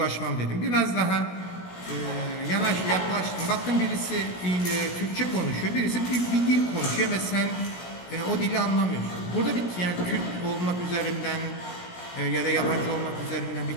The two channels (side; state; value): right; late; 17 ms